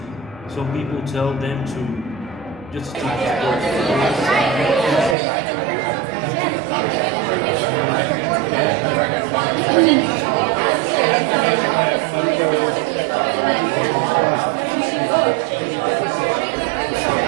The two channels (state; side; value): drops out; left; at 5.2 s